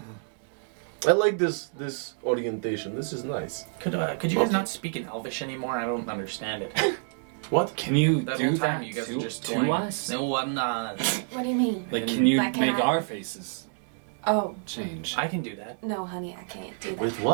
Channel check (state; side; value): silent; left; digital silence